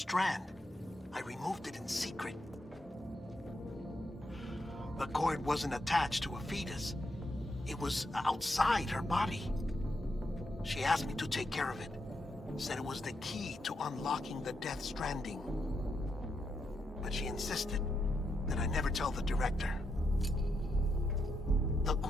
I removed it in secret. The cord wasn't attached to a fetus. It was outside her body. She asked me to take care of it. Said it was the key to unlocking the Death Stranding. But she insisted that I never tell the director. The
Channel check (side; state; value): both; normal; correlation 0.82